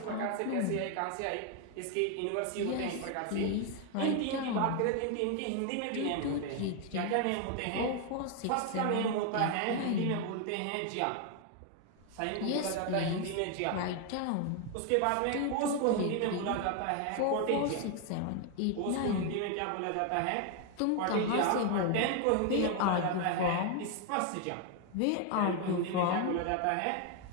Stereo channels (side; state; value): both; different; correlation 0.01